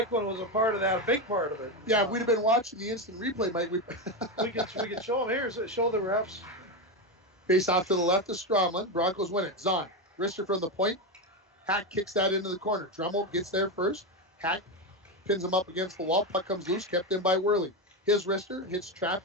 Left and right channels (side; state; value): both; normal; correlation 0.12